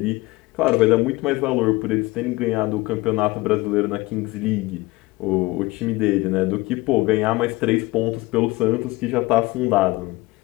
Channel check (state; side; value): quieter; right; 21.4 dB